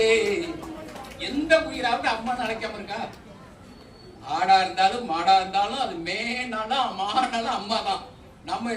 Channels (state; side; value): identical; both; correlation 1.00